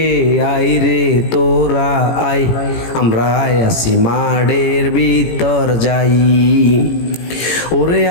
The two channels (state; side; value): late; right; 18 ms